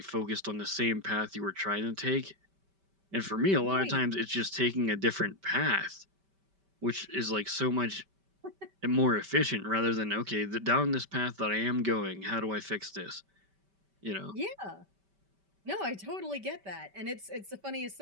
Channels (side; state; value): left; late; 5.1 ms